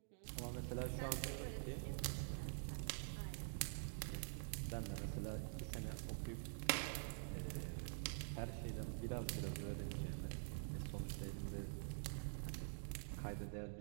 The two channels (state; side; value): silent; left; digital silence